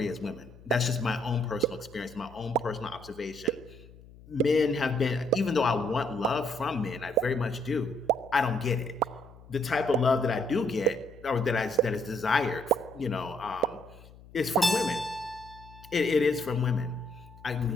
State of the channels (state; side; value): noise; left; hum, 21 dB below the sound